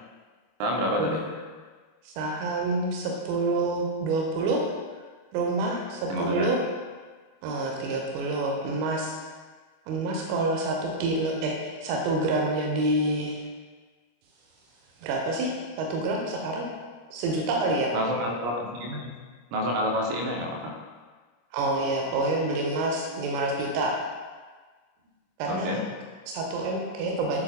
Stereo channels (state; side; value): late; left; 25 ms